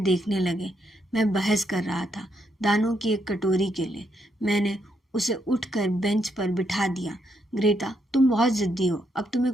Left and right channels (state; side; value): normal; both; correlation 0.77